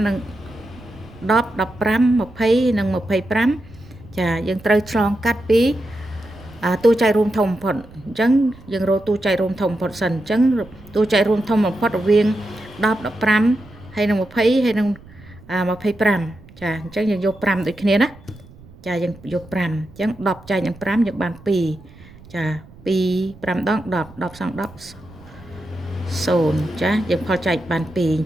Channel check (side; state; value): right; noise; rumble, 22 dB below the sound